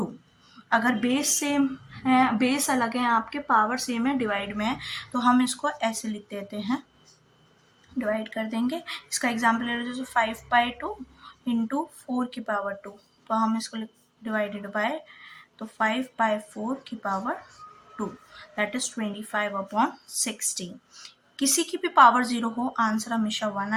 अगर बेस सेम है, बेस अलग है आपके, पावर सेम है, डिवाइड में है, तो हम इसको ऐसे लिख देते हैं, डिवाइड कर देंगे। इसका एग्जाम्पल ले लो, जैसे 5/2 इंटू 4 की पावर 2, तो हम इसको डिवाइडेड बाय, तो 5/4 की पावर 2 दैट इज 25/16। किसी की भी पावर 0 हो, आंसर हमेशा 1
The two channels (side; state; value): both; identical; correlation 1.00